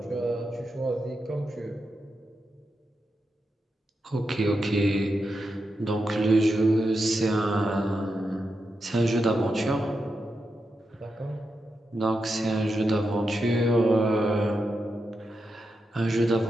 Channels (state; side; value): normal; both; correlation 0.87